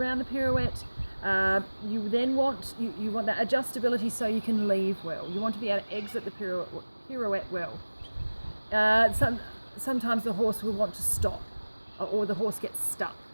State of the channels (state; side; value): inverted; both; correlation -1.00